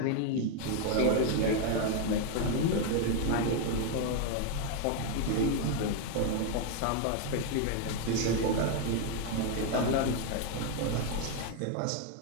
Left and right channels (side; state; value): both; different; correlation 0.01